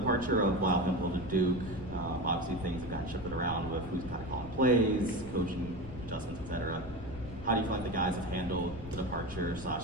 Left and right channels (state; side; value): noise; left; rumble, 14 dB below the sound